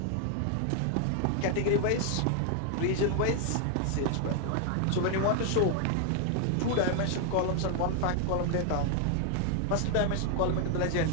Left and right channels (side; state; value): both; different; correlation 0.00